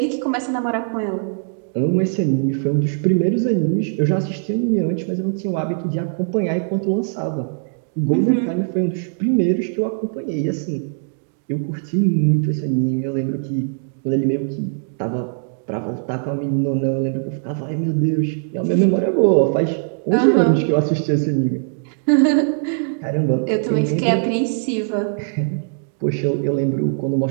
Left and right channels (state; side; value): silent; left; digital silence